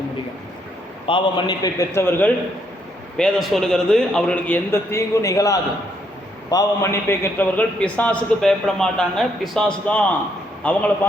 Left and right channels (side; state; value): both; normal; correlation 0.73